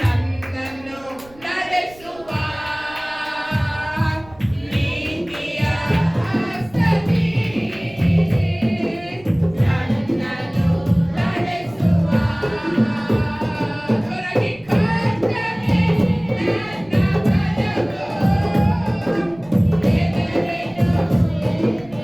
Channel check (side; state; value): right; noise; rumble, 24 dB below the sound